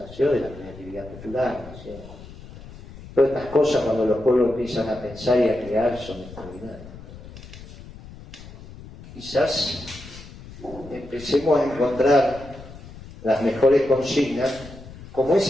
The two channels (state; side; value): noise; left; rumble, 16 dB below the sound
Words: De la creatividad popular, nació. Todas estas cosas, cuando los pueblos empiezan a pensar y a crear, son extraordinarias. Quizás empecemos a encontrar las mejores consignas, como